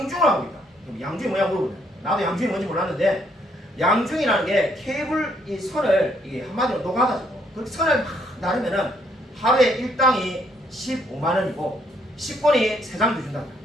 하고 있다. 양중이 뭐냐 물어보네. 나도 양중이 뭔지 몰랐는데, 양중이라는 게 케이블 이 선을 한마디로 녹아가지고 그 선을 막 나르면은 하루에 일당이 15만 원이고 10권이 3장 주준다.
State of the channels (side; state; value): both; normal; correlation 0.70